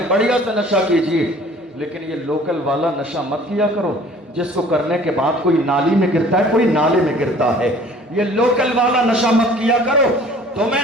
بڑھیا سے نشہ کیجئے, لیکن یہ لوکل والا نشہ مت کیا کرو جس کو کرنے کے بعد کوئی نالی میں گرتا ہے, کوئی نالے میں گرتا ہے. یہ لوکل والا نشہ مت کیا کرو.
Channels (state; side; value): normal; both; correlation 0.51